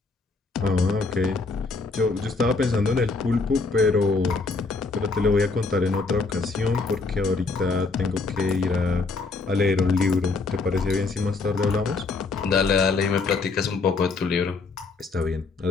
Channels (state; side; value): quieter; right; 4.1 dB